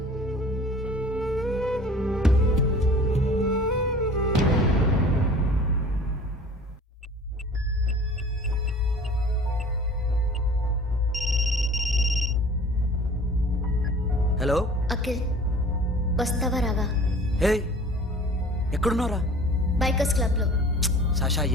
హలో అఖిల్, వస్తావా రావా? హే, ఎక్కడున్నారా? బైకర్స్ క్లబ్ లో. సాషా,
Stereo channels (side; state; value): both; normal; correlation 0.45